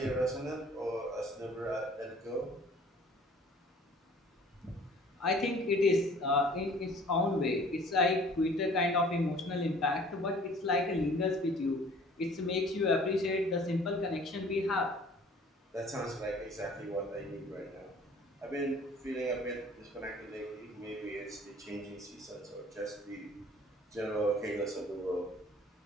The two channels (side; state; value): both; normal; correlation 0.51